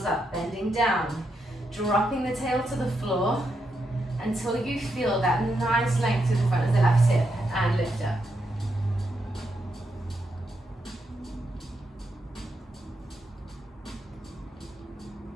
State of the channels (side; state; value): both; normal; correlation 0.82